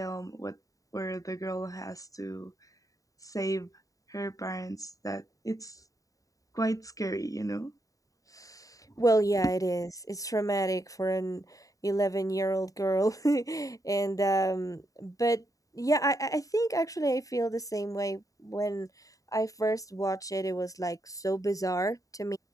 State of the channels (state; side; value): late; right; 0.16 ms